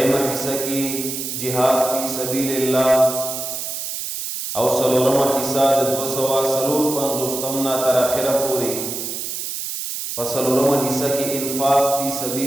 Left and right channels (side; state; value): right; noise; hiss, 5 dB below the sound